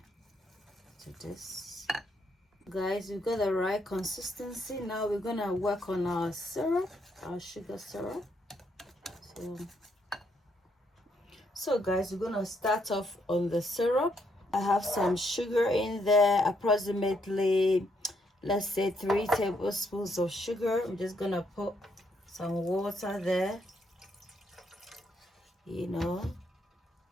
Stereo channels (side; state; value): both; normal; correlation 0.74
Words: to this. Guys, we've got the right consistency. Now we're gonna work on our syrup, our sugar syrup. So guys, we're gonna start off on the syrup. I have some sugar in there, approximately, let's say 3 tablespoons of sugar. I'm just gonna put some water there,